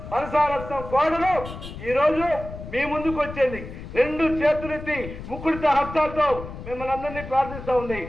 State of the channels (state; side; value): noise; left; rumble, 11 dB below the sound